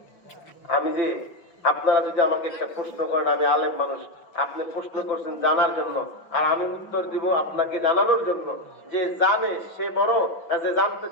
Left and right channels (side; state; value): right; late; 5.7 ms